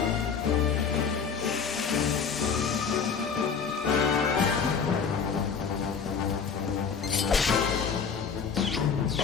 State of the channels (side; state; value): right; quieter; 6.2 dB